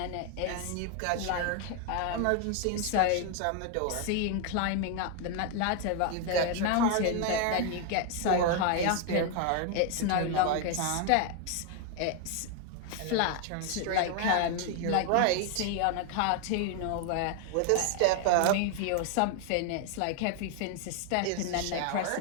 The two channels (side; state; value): both; different; correlation 0.01